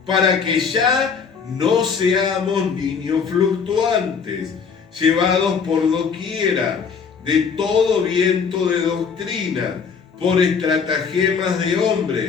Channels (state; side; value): quieter; right; 6.0 dB